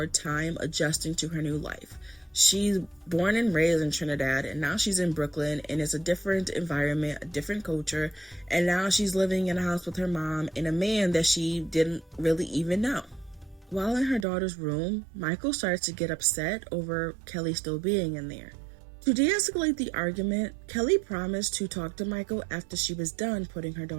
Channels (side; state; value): left; drops out; at 14.2 s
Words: time adjusting to her new life. She's born and raised in Trinidad, and now she's in Brooklyn, and it's a different environment, a different culture, and now she's living in a house with her mom and a man that she didn't really even know. While in her daughter's room, Michael started to get upset over Kelly still being in there. To de-escalate the argument, Kelly promised to talk to Michael after she was done putting her